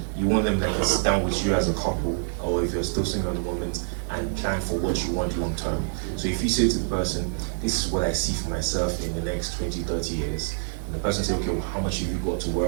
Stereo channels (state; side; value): silent; left; digital silence